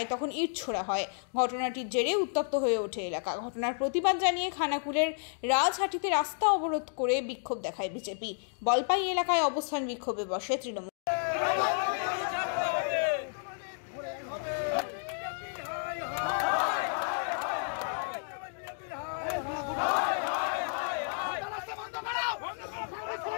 তখন ইট ছোড়া হয়। ঘটনাটির জেরে উত্তপ্ত হয়ে ওঠে এলাকা। ঘটনার প্রতিবাদ জানিয়ে খানাকুলের রাজহাটিতে রাস্তা অবরোধ করে বিক্ষোভ দেখায় বিজেপি। বলপাই এলাকায় অবস্থান বিক্ষোভে বসে তৃণমূল।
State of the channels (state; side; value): silent; right; digital silence